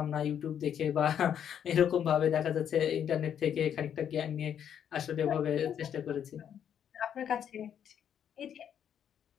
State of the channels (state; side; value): quieter; right; 9.0 dB